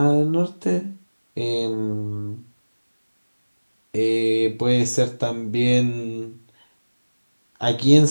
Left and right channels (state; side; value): inverted; both; correlation -1.00